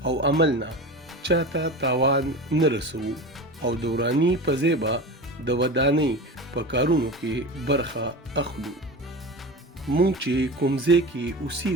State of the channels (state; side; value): normal; both; correlation 0.29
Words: او عمل نه چاته تاوان نه رسوو او د وراني په ځای به د ودانۍ په کارونو کې برخه اخلو. مونږ چې کوم ځای کې